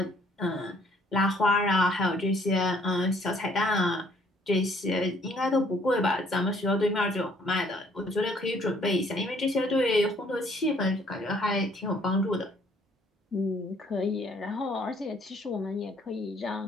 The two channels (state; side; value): normal; both; correlation 0.62